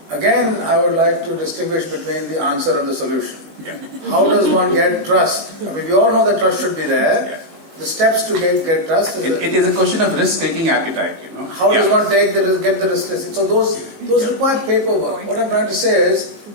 Again, I would like to distinguish between the answer and the solution. Yeah. How does one get trust? We all know that trust should be there. Yeah. The steps to get trust it is a question of risk-taking appetite. How does one get the risk? So those require paperwork. What I'm trying to say is,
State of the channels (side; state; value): left; late; 18 ms